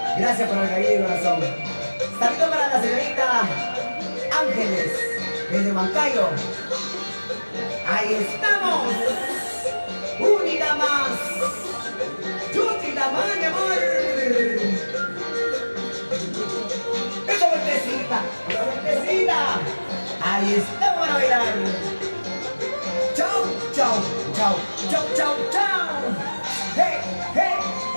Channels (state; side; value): inverted; both; correlation -1.00